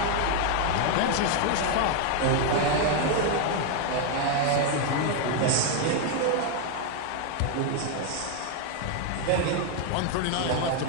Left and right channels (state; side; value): different; both; correlation 0.01